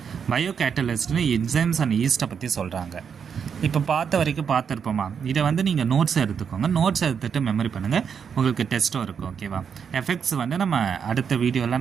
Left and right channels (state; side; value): quieter; left; 7.0 dB